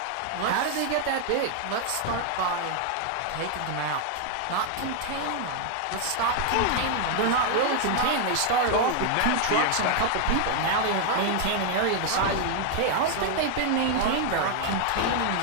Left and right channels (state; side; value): different; both; correlation 0.00